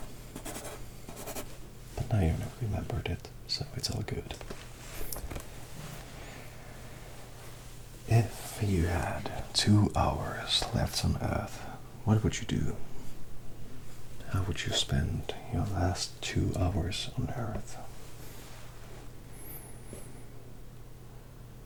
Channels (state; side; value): identical; both; correlation 1.00